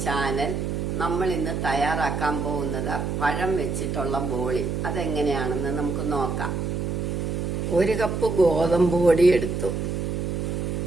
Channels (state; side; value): noise; right; hum, 2 dB below the sound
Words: channel. നമ്മൾ ഇന്ന് തയ്യാറാക്കാൻ പോകുന്നത് പഴം വെച്ചിട്ടുള്ള ബോളി. അതെങ്ങനെയാണെന്ന് നമുക്ക് നോക്കാം. 1 കപ്പ് ഗോതമ്പ് പൊടി എടുത്തു.